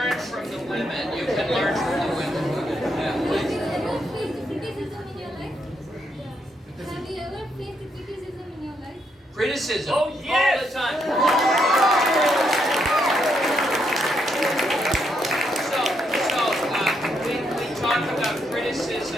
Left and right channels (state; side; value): normal; both; correlation 0.77